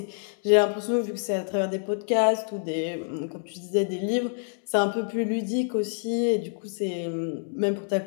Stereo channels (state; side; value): silent; right; 60 dB below the other